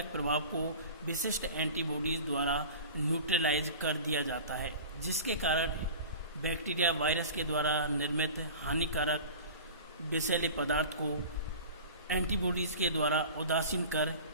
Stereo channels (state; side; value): inverted; both; correlation -0.37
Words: प्रभाव को विशिष्ट एंटीबॉडीज द्वारा न्यूट्रलाइज कर दिया जाता है, जिसके कारण बैक्टीरिया वायरस के द्वारा निर्मित हानिकारक विषैले पदार्थ को एंटीबॉडीज के द्वारा उदासीन कर